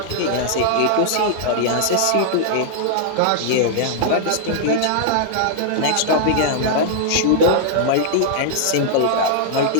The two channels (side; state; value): both; different; correlation -0.01